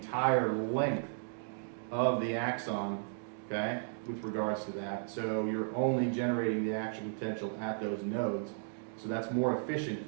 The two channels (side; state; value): left; silent; digital silence